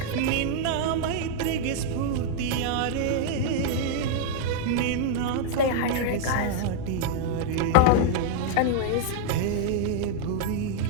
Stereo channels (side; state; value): both; different; correlation -0.01